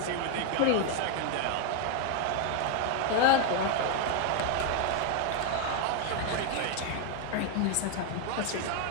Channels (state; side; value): different; both; correlation 0.01